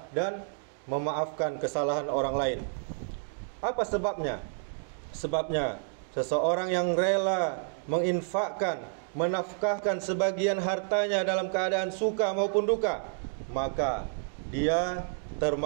dan memaafkan kesalahan orang lain. Apa sebabnya? Sebabnya seseorang yang rela menginfakkan, menafkahkan sebagian hartanya dalam keadaan suka maupun duka, maka dia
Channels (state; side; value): silent; left; digital silence